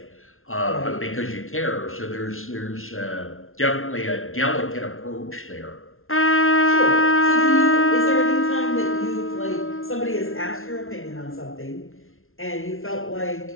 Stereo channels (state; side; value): late; right; 0.61 ms